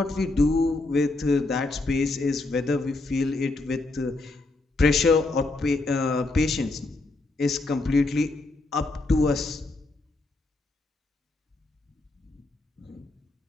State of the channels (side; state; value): right; quieter; 3.1 dB